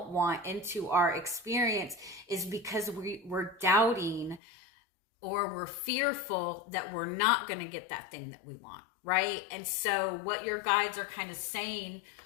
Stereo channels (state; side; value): drops out; right; at 4.4 s